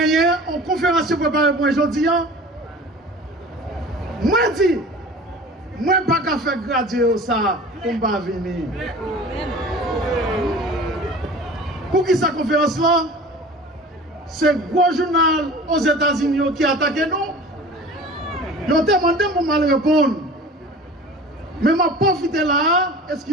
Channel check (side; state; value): both; normal; correlation 0.40